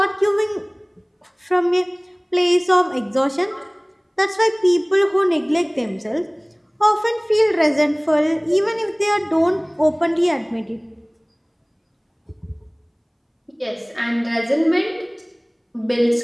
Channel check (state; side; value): identical; both; correlation 1.00